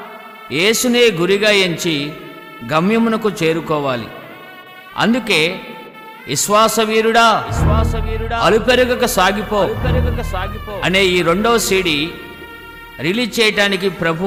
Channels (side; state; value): both; identical; correlation 1.00